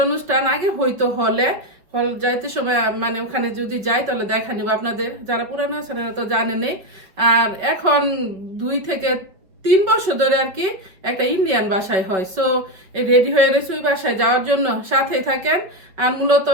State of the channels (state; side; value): late; left; 5.3 ms